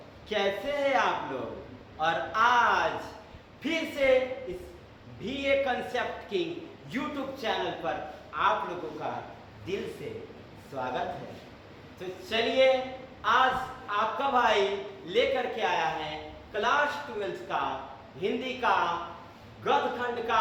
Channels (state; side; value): identical; both; correlation 1.00